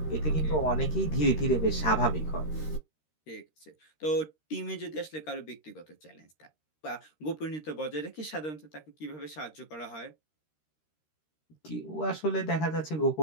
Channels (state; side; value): late; right; 13 ms